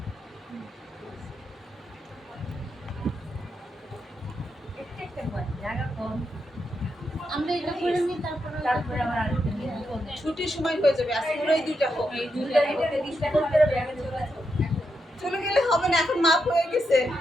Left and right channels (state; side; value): normal; both; correlation 0.84